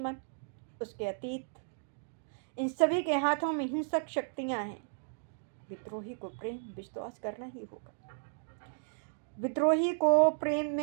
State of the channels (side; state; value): left; silent; digital silence